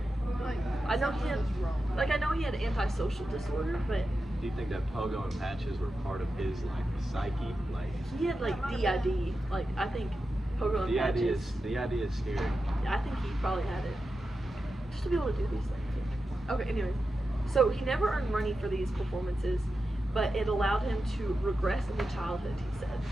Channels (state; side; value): normal; both; correlation 0.90